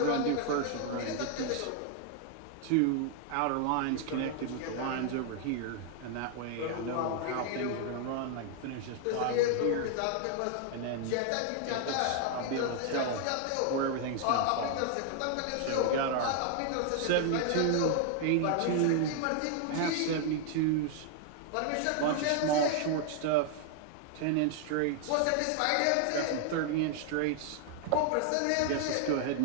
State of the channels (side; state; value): both; different; correlation 0.00